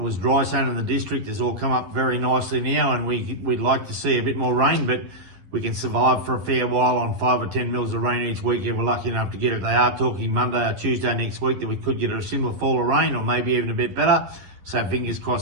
was dry sown in the district has all come up very nicely now, and we'd like to see a bit more rain, but we can survive for a fair while on 5 or 10 mils of rain each week if we're lucky enough to get it. They are talking Monday or Tuesday next week that we could get a similar fall of rain, or maybe even a bit better. So fingers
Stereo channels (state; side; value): late; left; 11 ms